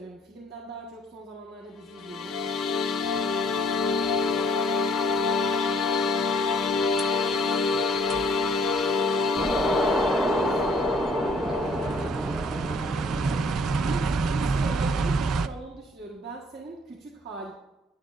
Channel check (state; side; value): normal; both; correlation 0.60